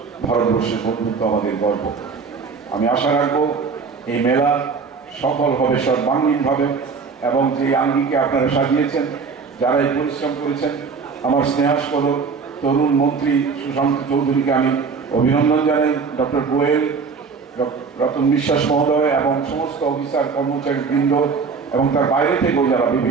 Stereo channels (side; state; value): left; quieter; 5.2 dB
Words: ভারতবর্ষের বন্ধুত্ব আমাদের গর্ব। আমি আশা রাখবো এই মেলা সফল হবে সর্বাঙ্গীনভাবে, এবং যে আঙ্গিকে আপনারা সাজিয়েছেন, যারা এই পরিশ্রম করেছেন, আমার স্নেহাস্পদ তরুণ মন্ত্রী সুশান্ত চৌধুরীকে আমি অভিনন্দন জানাই, ডক্টর গোয়েল, রতন বিশ্বাস মহোদয় এবং সমস্ত অফিসার কর্মচারী বৃন্দ এবং তার বাইরে থেকেও যারা